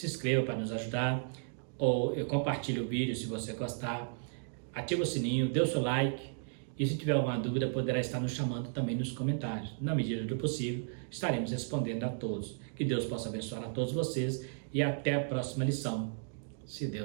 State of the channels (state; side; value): silent; left; digital silence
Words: inscreva para nos ajudar, ou compartilhe o vídeo se você gostar, ativa o sininho, dê o seu like E se tiver alguma dúvida, poderá estar nos chamando também nos comentários. Na medida do possível, estaremos respondendo a todos. Que Deus possa abençoar a todos vocês e até a próxima lição, se